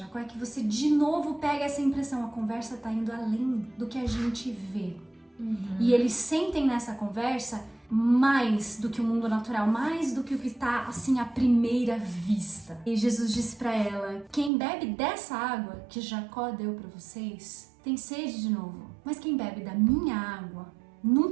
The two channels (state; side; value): drops out; left; at 14.5 s